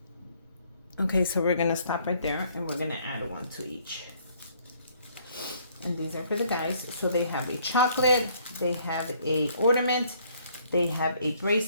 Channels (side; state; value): both; inverted; correlation -0.63